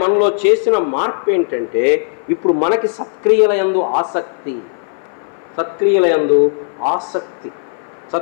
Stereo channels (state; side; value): silent; right; 59 dB below the other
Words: చేసిన మార్పు ఏంటంటే ఇప్పుడు మనకి సత్క్రియల యందు